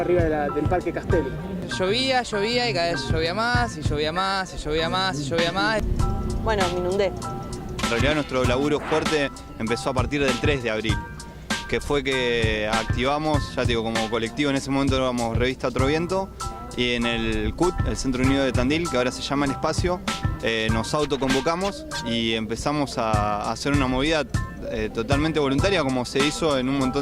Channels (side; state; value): both; identical; correlation 1.00